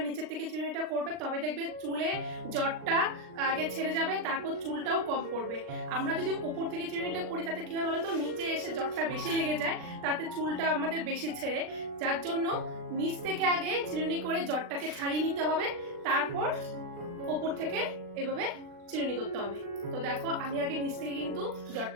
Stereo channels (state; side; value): late; left; 39 ms